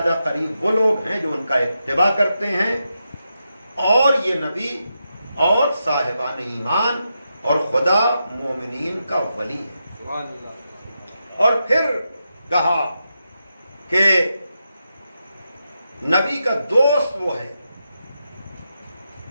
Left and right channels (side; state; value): both; inverted; correlation -0.86